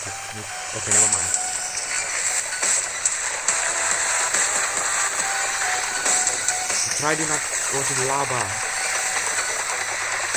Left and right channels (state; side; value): identical; both; correlation 1.00